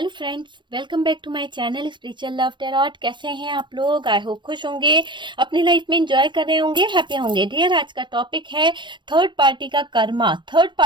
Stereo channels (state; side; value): late; left; 0.23 ms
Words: friends, welcome back to my channel spiritual love tarot. कैसे हैं आप लोग? आई होप खुश होंगे, अपनी लाइफ में एंजॉय कर रहे होंगे, हैप्पी होंगे। डियर, आज का टॉपिक है थर्ड पार्टी का कर्मा। थर्ड